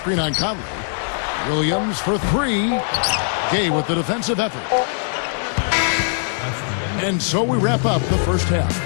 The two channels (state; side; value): silent; right; 65 dB below the other